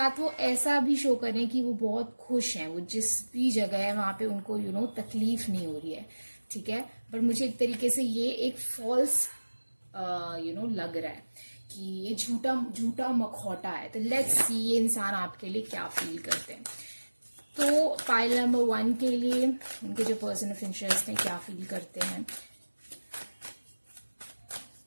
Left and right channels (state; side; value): inverted; both; correlation -1.00